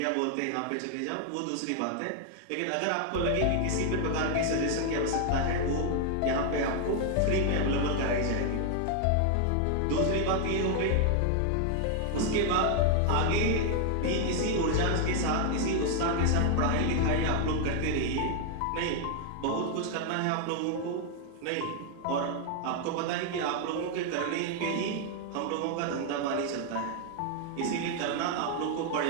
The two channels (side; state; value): both; different; correlation 0.00